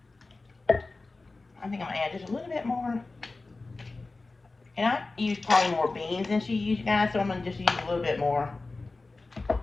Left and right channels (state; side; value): quieter; right; 3.5 dB